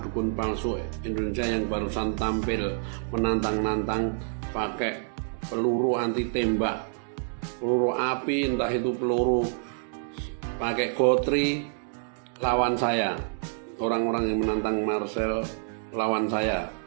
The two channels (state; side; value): silent; left; digital silence